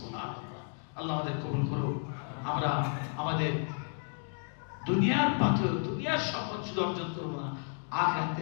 আল্লাহ আমাদের কবুল করুন। আমরা আমাদের দুনিয়ার পাথর, দুনিয়ার সম্পদ শুধু অর্জন করবো না,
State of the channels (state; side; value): silent; right; 56 dB below the other